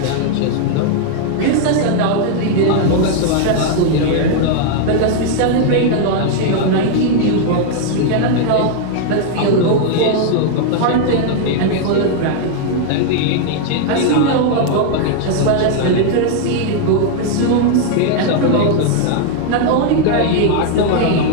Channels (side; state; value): both; different; correlation 0.00